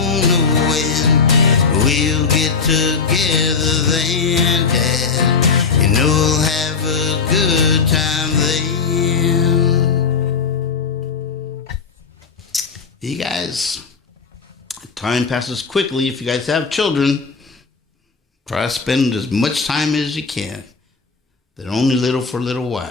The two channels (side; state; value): right; quieter; 5.2 dB